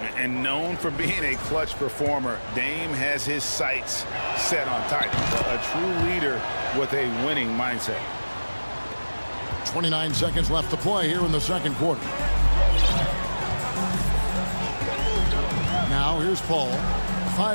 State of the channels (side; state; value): both; inverted; correlation -1.00